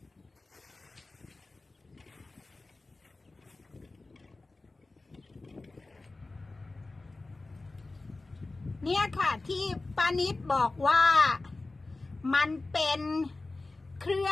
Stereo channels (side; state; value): right; quieter; 3.3 dB